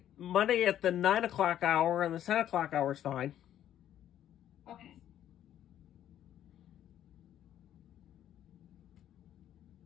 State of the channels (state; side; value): quieter; right; 11.2 dB